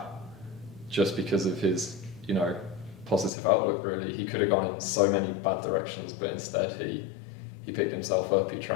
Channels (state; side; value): drops out; right; at 3.3 s